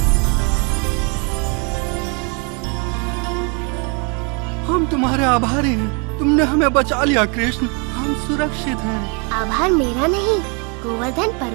हम तुम्हारे आभारी हैं। तुमने हमें बचा लिया कृष्ण, हम सुरक्षित हैं। आभार मेरा नहीं, गोवर्धन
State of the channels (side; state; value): left; quieter; 34.7 dB